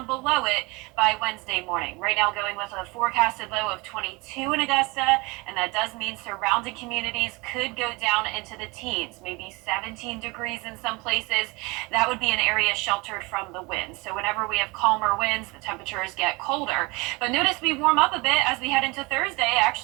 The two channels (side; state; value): left; quieter; 25.7 dB